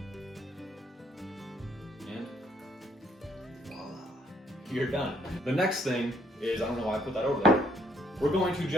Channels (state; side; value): normal; both; correlation 0.67